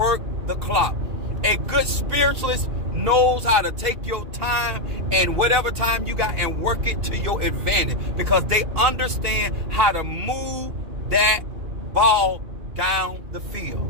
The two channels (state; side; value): late; left; 2.4 ms